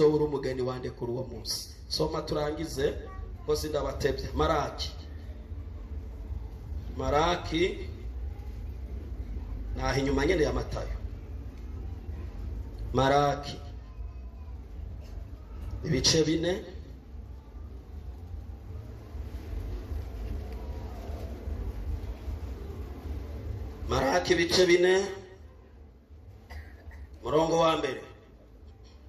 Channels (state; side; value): identical; both; correlation 1.00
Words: umugeni wande kuri uwo munsi. Soma turangize ko sindabatebye. Maraki naho inyuma nyene ya Matayo. Maraki ibice 4 Maraki ibice 4 murongo wa mbere.